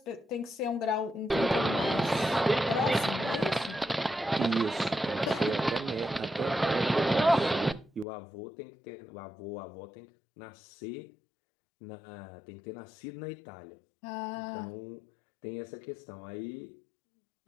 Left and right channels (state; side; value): drops out; right; at 8.1 s